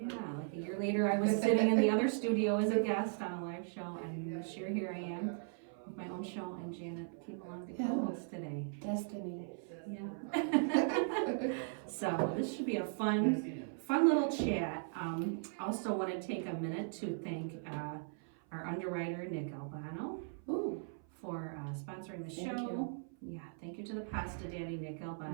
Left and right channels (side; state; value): left; silent; 52 dB below the other